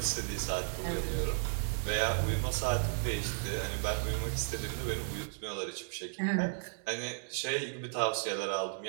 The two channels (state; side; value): silent; left; digital silence